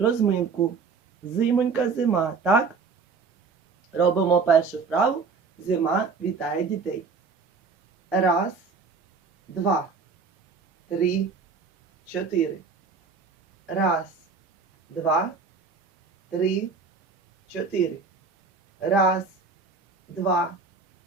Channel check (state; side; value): quieter; left; 4.9 dB